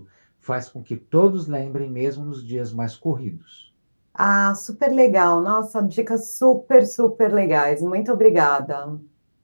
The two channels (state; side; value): inverted; both; correlation -1.00